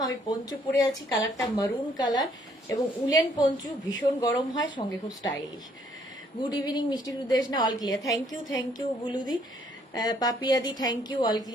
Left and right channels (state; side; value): normal; both; correlation 0.66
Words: আমি পঞ্চু পরে আছি, কালারটা মারুন কালার এবং উলেন পঞ্চু, ভীষণ গরম হয়, সঙ্গে খুব স্টাইলিশ। গুড ইভিনিং মিষ্টি সুদেশ না, অল ক্লিয়ার, থ্যাংক ইউ বুলুদি, পাপিয়াদি thank you, all